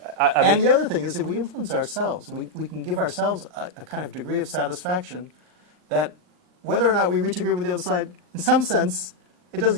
And the other thing is, if we influence ourselves, we can give ourselves a kind of degree of satisfaction that whether or not we reach agreement with the other side, in some sense, it doesn't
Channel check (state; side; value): late; left; 39 ms